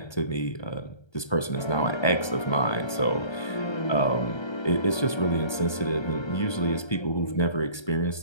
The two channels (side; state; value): right; late; 1.3 ms